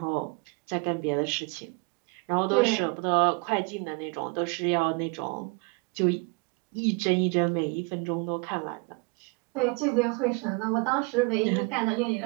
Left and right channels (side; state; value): left; quieter; 31.1 dB